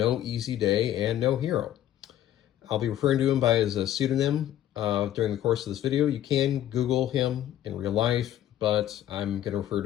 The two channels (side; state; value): right; quieter; 12.1 dB